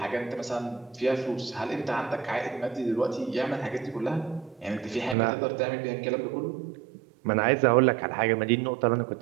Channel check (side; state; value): left; drops out; at 5.2 s